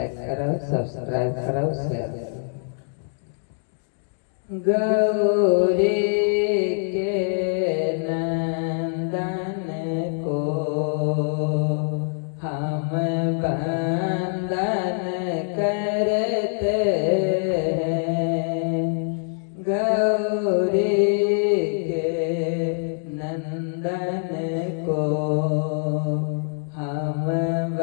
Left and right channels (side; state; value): right; silent; digital silence